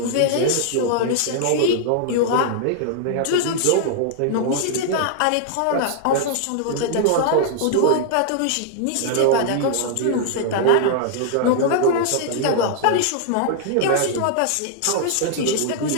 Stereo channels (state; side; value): different; both; correlation -0.01